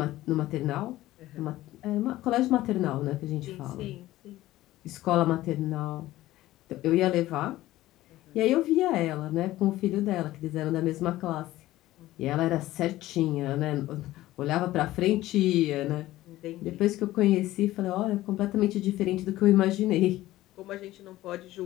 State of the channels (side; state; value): right; quieter; 16.0 dB